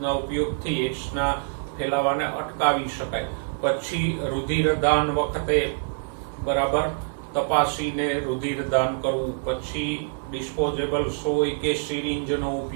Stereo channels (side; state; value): left; silent; 61 dB below the other